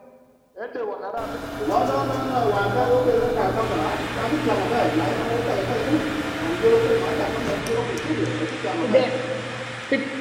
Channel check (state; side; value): identical; both; correlation 1.00